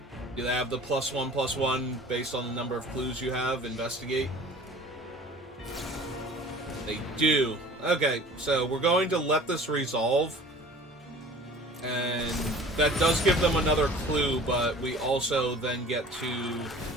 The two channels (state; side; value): normal; both; correlation 0.45